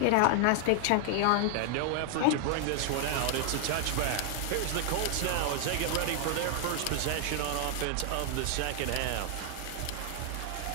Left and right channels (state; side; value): different; both; correlation 0.00